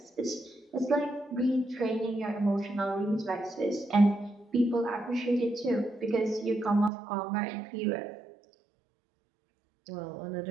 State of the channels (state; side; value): drops out; left; at 6.9 s